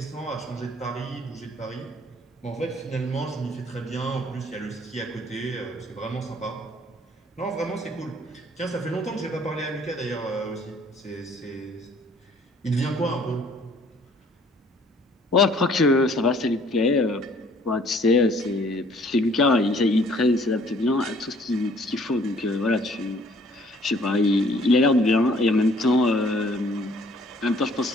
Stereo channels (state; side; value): normal; both; correlation 0.58